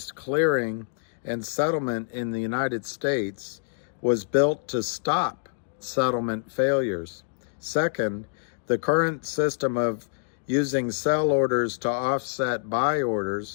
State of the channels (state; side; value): silent; right; digital silence